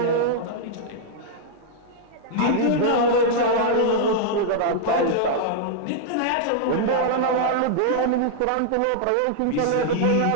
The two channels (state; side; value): different; both; correlation -0.01